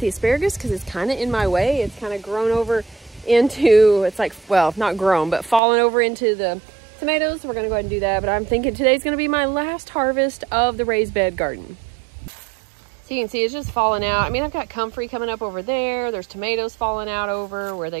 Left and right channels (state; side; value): drops out; left; at 5.6 s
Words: asparagus because it's kind of in my way. It's kind of grown over into, it's like, well, not grown, but fallen over into the tomatoes. So we're gonna go ahead and do that. But I'm thinking today's gonna be my last harvest of the raised bed garden. So you can see it's just falling out. I mean, I've got comfrey coming up over there. There's tomatoes falling out over where they